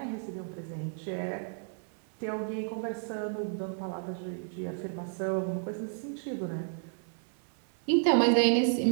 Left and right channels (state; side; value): silent; left; 56 dB below the other